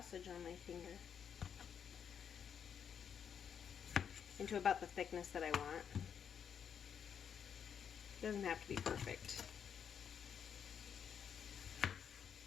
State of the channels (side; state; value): right; quieter; 7.8 dB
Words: on my finger. Into about the thickness that I want. It doesn't have to be perfect.